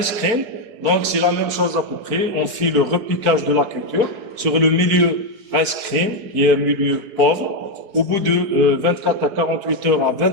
cream, donc c'est la même chose à peu près. On fait le repiquage de la culture sur le milieu rice cream, qui est un milieu pauvre. Au bout de 24 à 48 heures à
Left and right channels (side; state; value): left; late; 4.8 ms